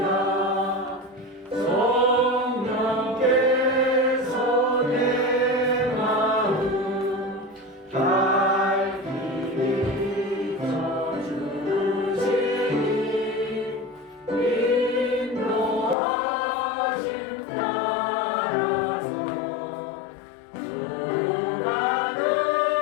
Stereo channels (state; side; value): drops out; right; at 16.0 s